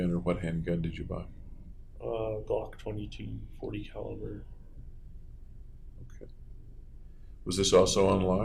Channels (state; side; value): identical; both; correlation 1.00